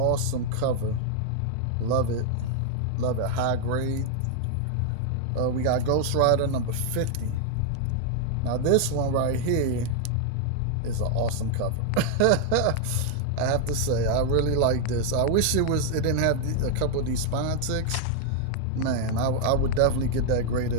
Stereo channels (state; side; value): different; both; correlation 0.00